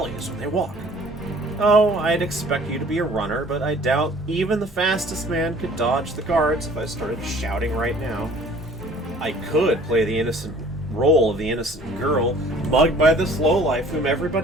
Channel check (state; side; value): normal; both; correlation 0.52